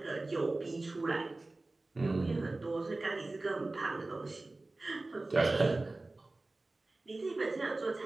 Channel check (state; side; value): quieter; left; 3.0 dB